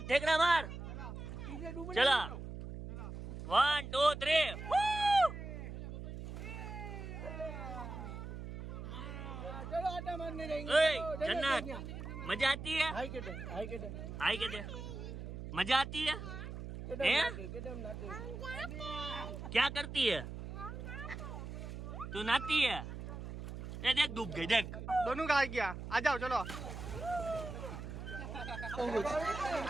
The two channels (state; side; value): noise; right; hum, 8 dB below the sound